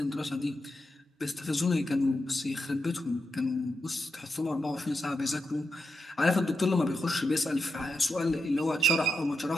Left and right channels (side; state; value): both; normal; correlation 0.86